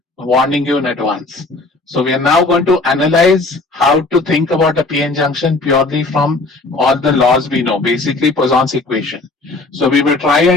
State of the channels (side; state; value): right; quieter; 3.3 dB